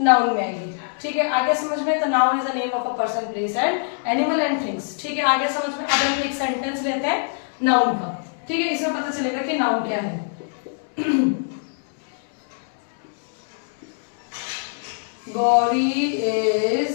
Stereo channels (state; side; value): silent; right; digital silence